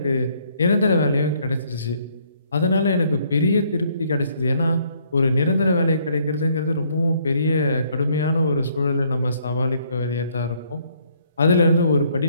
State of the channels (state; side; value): inverted; both; correlation -0.66